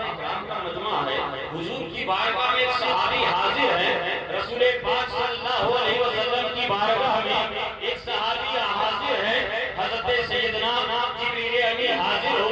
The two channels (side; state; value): both; identical; correlation 1.00